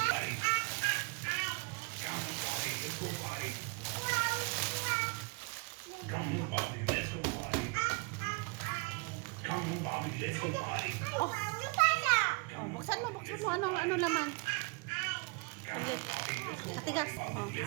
Oh. Oh, buksan mo. Ano laman? Ulit. Matigas. Oh,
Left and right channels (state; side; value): quieter; left; 30.2 dB